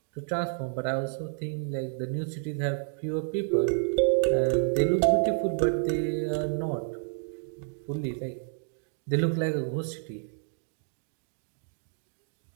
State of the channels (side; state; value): left; silent; digital silence